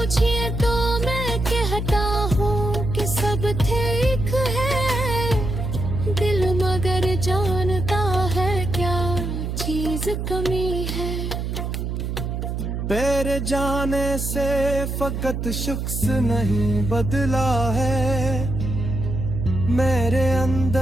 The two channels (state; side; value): noise; right; hum, 3 dB below the sound